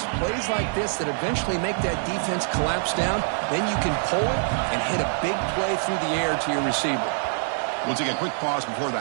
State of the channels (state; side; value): silent; left; digital silence